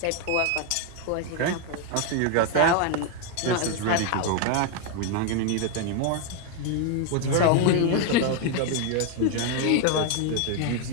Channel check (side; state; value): both; different; correlation 0.01